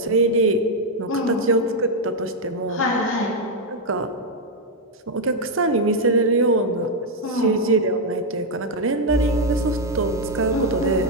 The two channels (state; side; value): normal; both; correlation 0.01